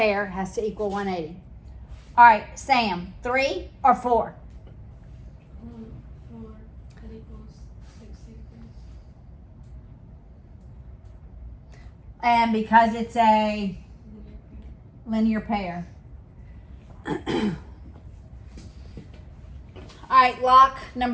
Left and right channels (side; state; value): both; identical; correlation 1.00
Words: has to equal 180. All right, Sam, 3 or 4? 4. That equals 60 degrees. And because it's a Linear pair. linear pair. All right, lock